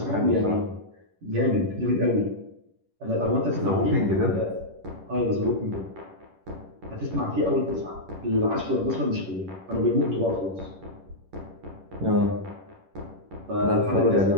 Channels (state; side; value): late; left; 11 ms